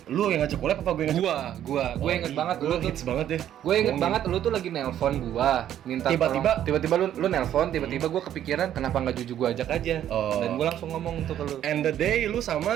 lu yang ngajak collab apa gue yang ngajak? Gue inget banget lu tuh. hits banget ya. Gue inget banget lu tuh lagi nelpon gua, minta tiba-tiba lu nelpon, tiba-tiba gua kepikiran kenapa nggak Juju gua ajak aja. Oh. Dan gua langsung ngomong tuh ke lu. And the day lu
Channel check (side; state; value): left; quieter; 11.0 dB